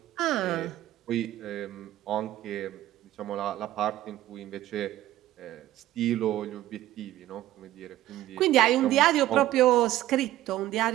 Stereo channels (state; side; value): quieter; left; 14.5 dB